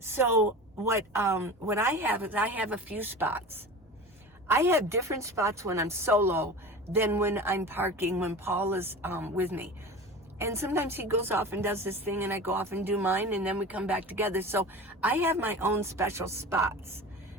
what I have is I have a few spots. I have different spots when I'm solo than when I'm parking, when Paul is with me. And sometimes he goes off and does this thing and I go off and do mine and then we come back together. So I have my own special spots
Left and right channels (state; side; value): normal; both; correlation 0.33